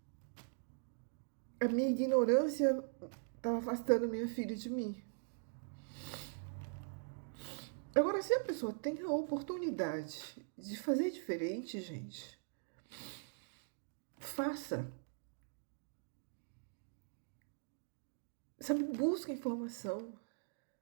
a minha ignorância estava afastando minha filha de mim. Agora, se a pessoa tem a oportunidade de fazer diferente, gente, faça. Sabe, busca informação.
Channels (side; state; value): left; silent; digital silence